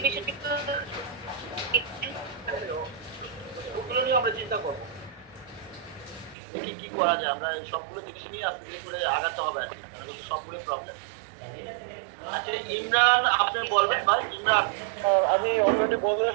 বিষয়টা একটু দেখতেন। ওগুলো নিয়ে আমরা চিন্তা করবো কি কি করা যায়। আমরা সবগুলো জিনিস নিয়ে আস্তে করে আগাতে হবে, সবগুলো প্রবলেম। আচ্ছা ইমরান, আপনি বলবেন ভাই? ইমরান আমি অলরেডি বলে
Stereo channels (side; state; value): left; drops out; at 6.4 s